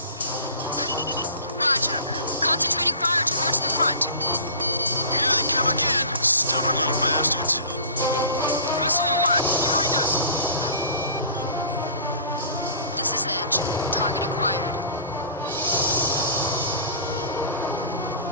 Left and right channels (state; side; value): inverted; both; correlation -0.42